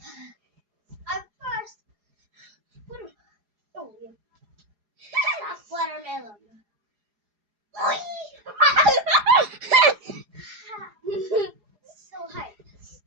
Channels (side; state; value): left; late; 4.8 ms